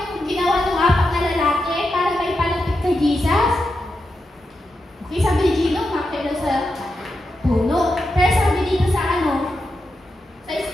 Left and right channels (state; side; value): normal; both; correlation 0.87